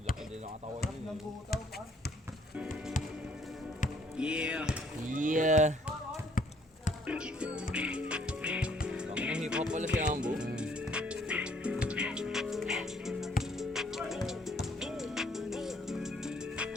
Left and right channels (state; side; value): normal; both; correlation 0.64